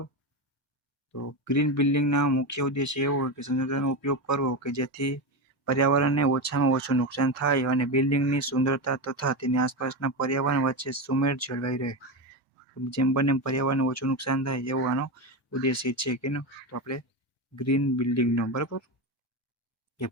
તો ગ્રીન બિલ્ડિંગના મુખ્ય ઉદ્દેશ એવો હોય કે સંસાધનોનો ઉપયોગ કરવો કે જેથી પર્યાવરણને ઓછામાં ઓછું નુકસાન થાય અને બિલ્ડિંગની સુંદરતા તથા તેની આસપાસના પર્યાવરણ વચ્ચે સુમેળ જળવાઈ રહે. જેમ બને પર્યાવરણને ઓછું નુકસાન થાય એવો આનો ઉદ્દેશ્ય છે કે તો આપણે ગ્રીન બિલ્ડિંગનો. બરાબર. કે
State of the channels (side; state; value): both; normal; correlation 0.16